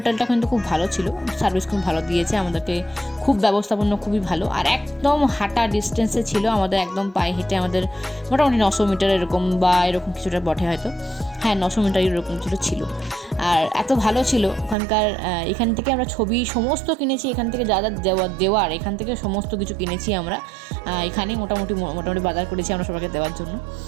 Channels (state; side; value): drops out; left; at 14.8 s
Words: কিন্তু খুব ভালো ছিল, সার্ভিস খুব ভালো দিয়েছে আমাদেরকে, খুব ব্যবস্থাপনা খুবই ভালো। আর একদম হাঁটা ডিস্টেন্সে ছিল আমাদের, একদম পায়ে হেঁটে আমাদের মোটামুটি 900 মিটার এরকম বা এরকম কিছুটা বটে হয়তো, হ্যাঁ 900 মিটার এরকম ছিল। আর এত ভালো ছিল ওখানকার। এখান থেকে আমরা ছবি সমস্ত কিনেছি, এখান থেকে যা যা দেওয়ার এখান থেকে সমস্ত কিছু কিনেছি আমরা। এখানে মোটামুটি বাজার করেছি আমরা সবাইকে দেওয়ার জন্য।